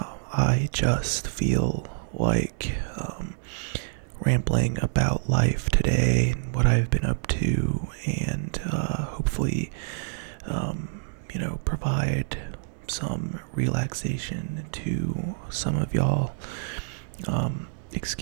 I just feel like rambling about life today and what I've been up to, and hopefully, provide some relaxation to some of y'all.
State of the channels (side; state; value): left; silent; digital silence